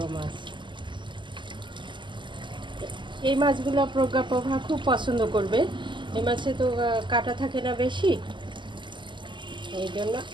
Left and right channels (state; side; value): late; left; 0.23 ms